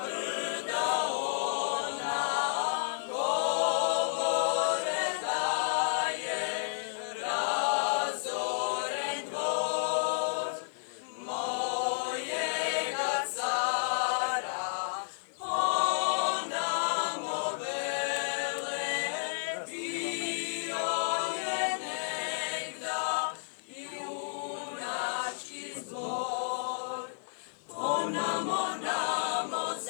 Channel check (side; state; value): right; silent; digital silence